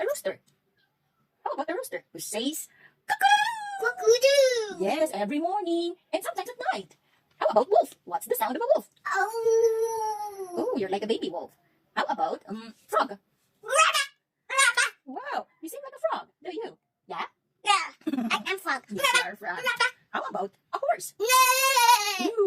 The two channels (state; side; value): identical; both; correlation 1.00